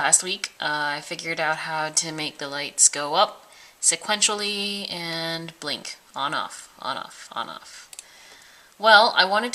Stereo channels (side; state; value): both; identical; correlation 1.00